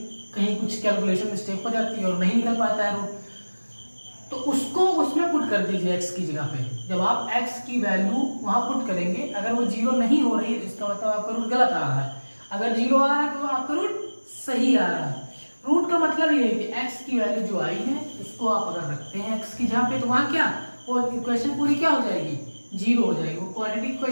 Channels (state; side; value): inverted; both; correlation -1.00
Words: कहीं कुछ कैलकुलेशन मिस्टेक हो जाती है और नहीं निकल पाता है रूट, तो उसको उसमें पुट कर दीजिए x की जगह पे। जब आप x की वैल्यू वहां पुट करेंगे, अगर वो 0 नहीं हो रही है इसका मतलब आपका रूट गलत आ रहा है। अगर 0 आ रहा है तो आपका रूट सही आ रहा है। रूट का मतलब ये है कि x की वैल्यू जो आई है उसको आप अगर रखते हैं x की जगह पे, तो वहां क्या, वो इक्वेशन पूरी क्या हो जाएगी, 0 हो जाएगी। वो क्वाड्रेटिक